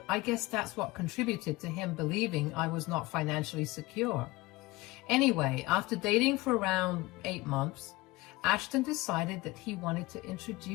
I guess that's what contributed to him believing I was not financially secure. Anyway, after dating for around 8 months, Ashton decided that he wanted to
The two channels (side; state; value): right; quieter; 20.7 dB